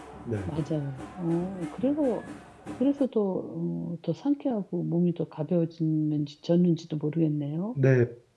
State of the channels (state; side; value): identical; both; correlation 1.00